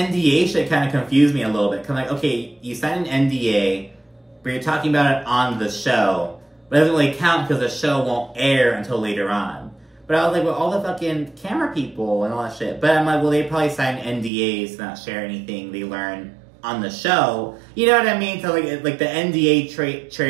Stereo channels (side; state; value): left; drops out; at 14.3 s